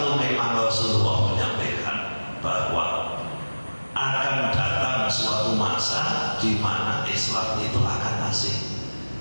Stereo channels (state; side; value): inverted; both; correlation -1.00